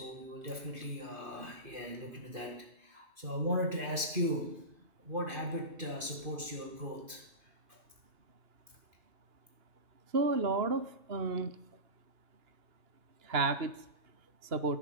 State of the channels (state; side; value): late; left; 2.5 ms